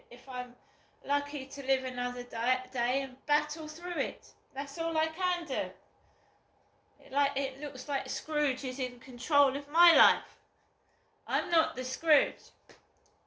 I'm lucky to live another day and battle through it. That's all I can do. It looks like Scrooge is in control of my life. I'm not the Scrooge.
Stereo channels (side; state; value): both; identical; correlation 1.00